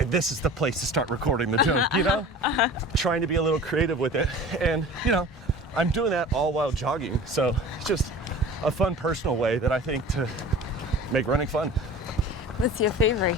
this is the place to start recording the joke. Trying to be a little creative with it, and I'm doing that all while jogging. So it's just a fun personal way that I think to make running fun. What's your favorite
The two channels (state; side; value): normal; both; correlation 0.40